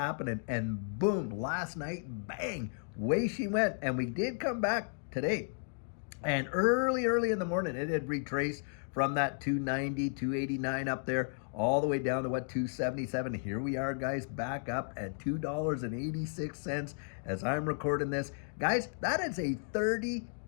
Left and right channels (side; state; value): right; silent; digital silence